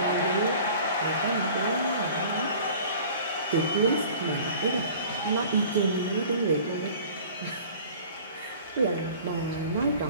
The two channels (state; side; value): inverted; both; correlation -0.46